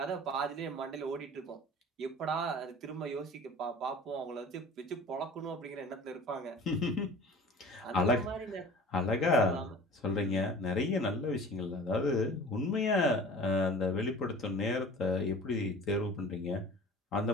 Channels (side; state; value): both; normal; correlation 0.43